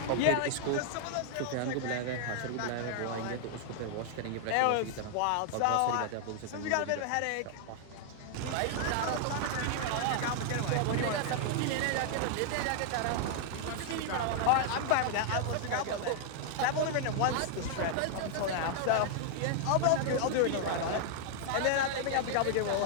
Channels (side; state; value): both; different; correlation 0.00